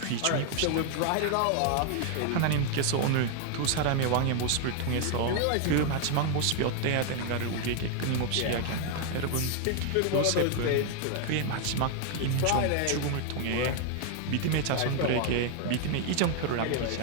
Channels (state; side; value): different; both; correlation 0.00